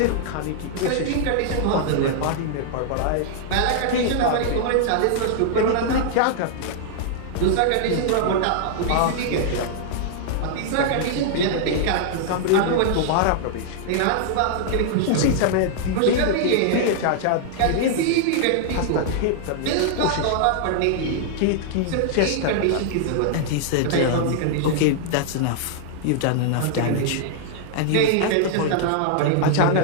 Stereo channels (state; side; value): different; both; correlation -0.01